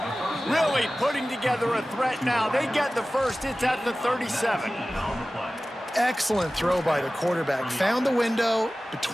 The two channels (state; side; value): normal; both; correlation 0.97